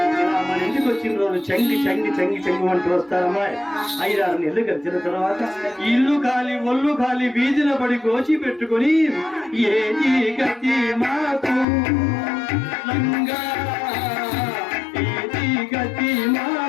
చెంగి చెంగి చెంగి చెంగి అంటూ వస్తారమ్మాయి. 5-6 నెలలు గడిచిన తర్వాత ఇల్లు ఖాళీ ఒళ్ళు ఖాళీ వీధిన పడి కోచి పెట్టుకొని ఏది గతి మాకు లంగా ఏది గతి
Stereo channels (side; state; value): right; drops out; at 11.7 s